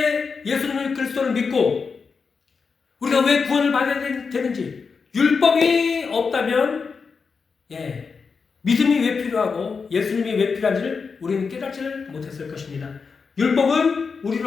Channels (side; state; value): right; quieter; 5.2 dB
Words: 예수님을 그리스도를 믿고 우리가 왜 구원을 받아야 되는지, 율법이 없다면 믿음이 왜 필요하고 예수님이 왜 필요한지를 우리는 깨닫지를 못했을 것입니다. 율법은